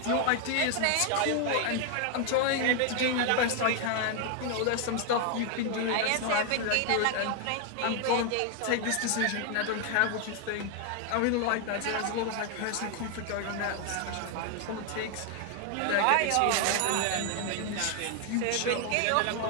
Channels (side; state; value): both; different; correlation 0.00